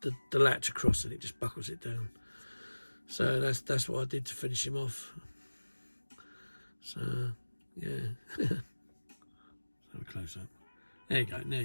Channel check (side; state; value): both; inverted; correlation -1.00